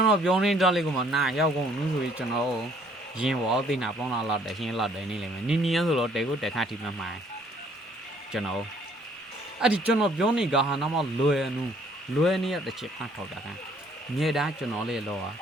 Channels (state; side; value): normal; both; correlation 0.62